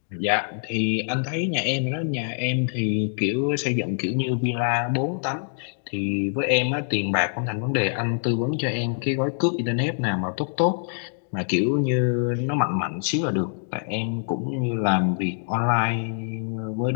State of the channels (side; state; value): right; silent; digital silence